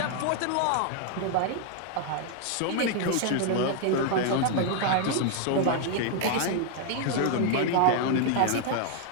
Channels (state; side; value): different; both; correlation 0.00